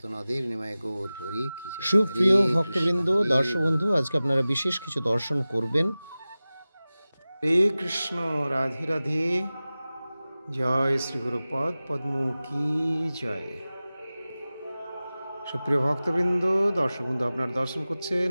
নিমায় গৌর হরি কি জয়। সুপ্রিয় ভক্তবৃন্দ, দর্শক বন্ধু, আজকে আপনারা বিশেষ কিছু দর্শন করবেন। হরে কৃষ্ণ, রাধে রাধে। জয় শ্রী গুরুপদ পদ্ম কি জয়। সুপ্রিয় ভক্তবৃন্দ, দর্শক বন্ধু, আপনারা দর্শন করছেন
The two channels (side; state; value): both; inverted; correlation -0.97